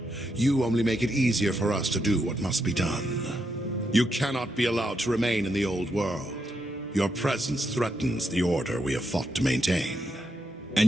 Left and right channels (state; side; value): normal; both; correlation 0.81